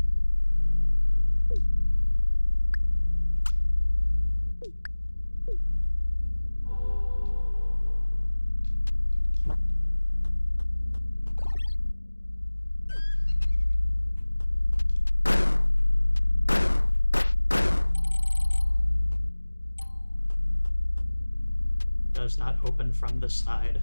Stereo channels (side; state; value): both; inverted; correlation -1.00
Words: Does not open from the side.